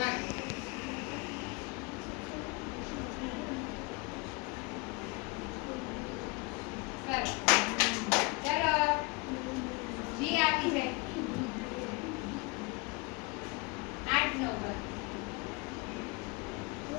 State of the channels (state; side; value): quieter; right; 28.1 dB